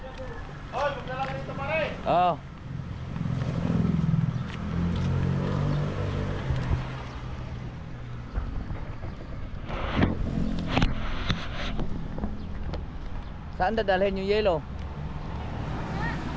Oy, magdala ka dito pare. Oh. Saan dadalhin yung yelo?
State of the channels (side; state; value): both; identical; correlation 1.00